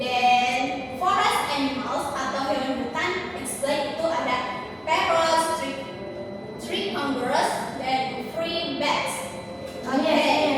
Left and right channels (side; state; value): both; identical; correlation 1.00